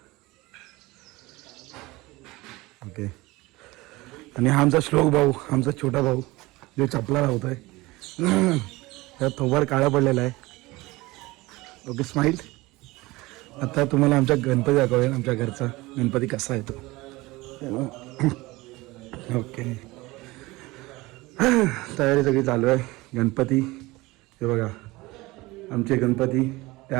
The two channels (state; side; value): quieter; left; 21.2 dB